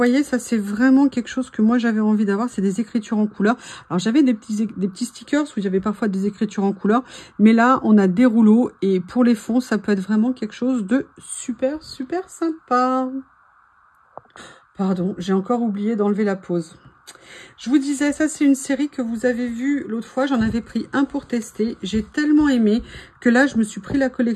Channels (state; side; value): identical; both; correlation 1.00